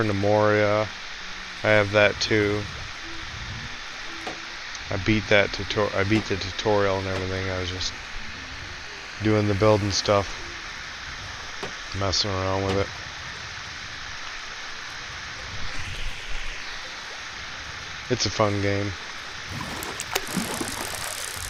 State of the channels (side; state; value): both; identical; correlation 1.00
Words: to Moria. I have that too. I beat the tutorial and everything. I was just doing the building stuff, messing around with it. It's a fun game.